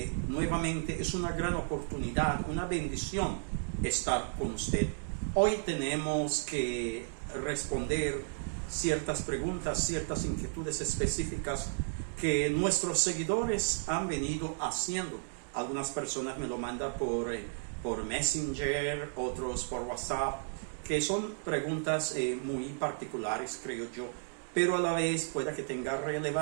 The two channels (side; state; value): left; silent; digital silence